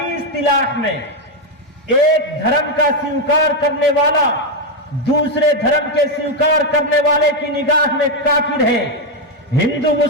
इस्तिलाह में एक धर्म का स्वीकार करने वाला दूसरे धर्म के स्वीकार करने वाले की निगाह में काफिर है। हिंदू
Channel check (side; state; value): both; normal; correlation 0.04